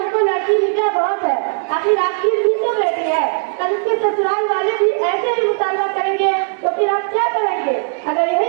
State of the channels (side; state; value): left; silent; digital silence